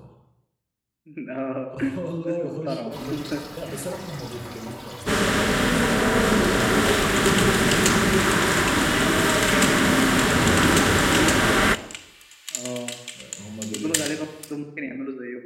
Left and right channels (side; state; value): both; identical; correlation 1.00